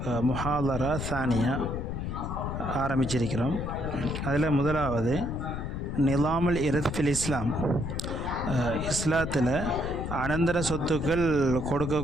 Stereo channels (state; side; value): noise; left; rumble, 4 dB below the sound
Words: முஹாதரா சானியா ஆரம்பிச்சிருக்கிறோம். அதில் முதலாவது நிலாமுல் இர்த் ஃபில் இஸ்லாம், இஸ்லாத்தில் அனந்தர சொத்துக்கள்